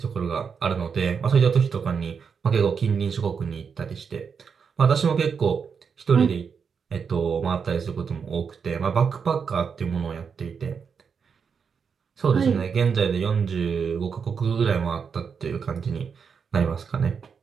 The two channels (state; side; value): quieter; left; 6.2 dB